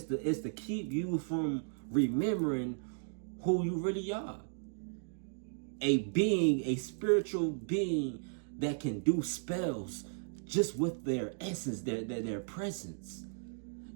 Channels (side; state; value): left; silent; digital silence